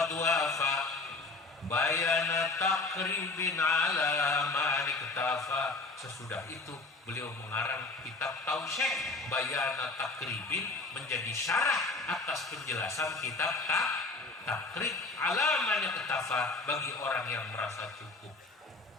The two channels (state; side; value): quieter; right; 3.5 dB